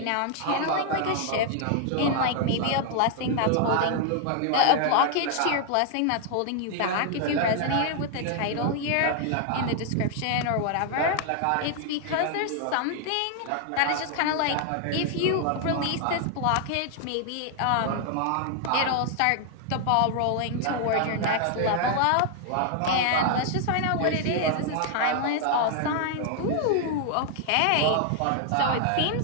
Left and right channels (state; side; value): different; both; correlation 0.00